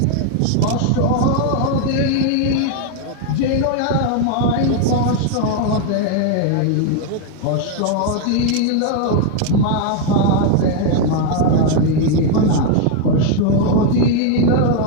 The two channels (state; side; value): different; both; correlation 0.00